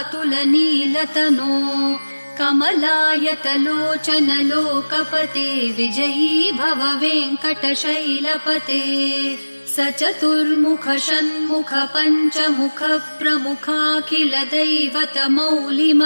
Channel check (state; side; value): inverted; both; correlation -1.00